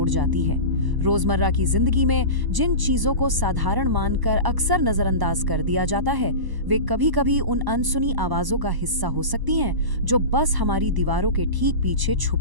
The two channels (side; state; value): left; late; 1.0 ms